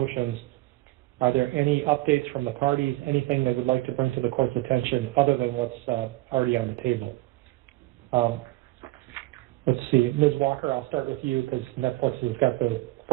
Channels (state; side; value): quieter; left; 18.8 dB